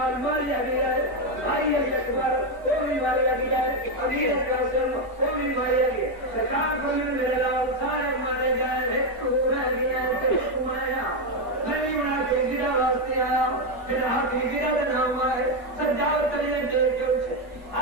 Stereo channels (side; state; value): both; normal; correlation 0.05